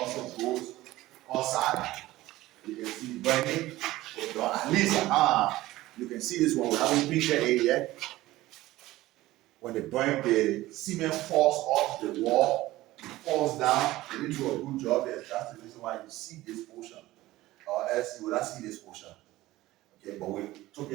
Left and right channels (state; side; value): quieter; left; 17.1 dB